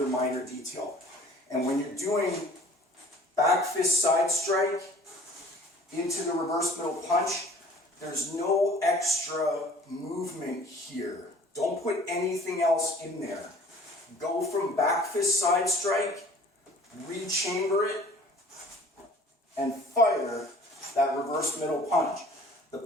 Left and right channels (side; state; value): both; normal; correlation 0.50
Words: minor detail. And when you're doing back fist side strike into the reverse middle punch, there's no extra movement here Don't put anything else in there. Go from back fist side strike, rechamber it, and fire that reverse middle punch. The